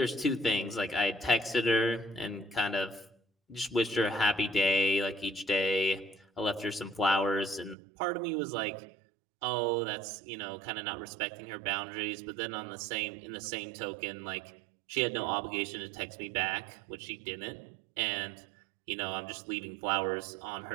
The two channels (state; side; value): drops out; left; at 7.8 s